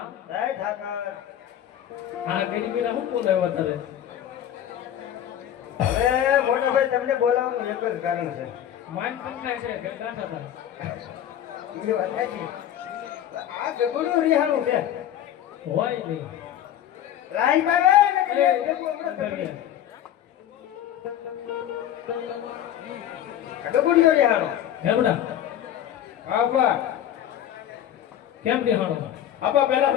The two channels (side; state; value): right; quieter; 11.0 dB